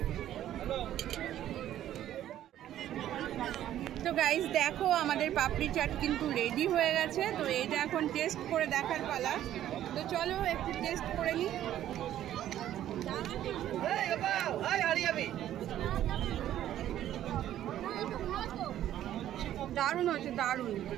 তো গাইস দেখো আমাদের পাপড়ি চাট কিন্তু রেডি হয়ে গেছে। তো এটা এখন টেস্ট করে দেখার পালা। তো চলো একটু টেস্ট করে নিই। দারুণ হয়েছে, দারুণ,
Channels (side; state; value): left; quieter; 12.1 dB